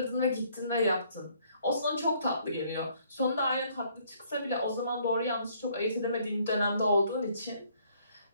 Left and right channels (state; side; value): inverted; both; correlation -0.64